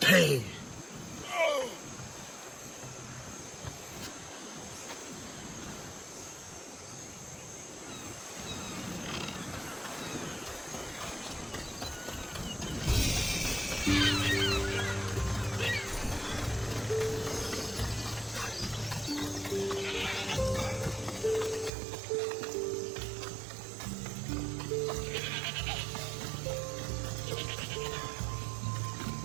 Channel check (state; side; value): drops out; left; at 21.7 s